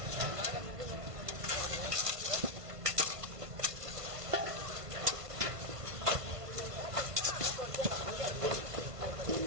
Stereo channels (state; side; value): late; left; 1.5 ms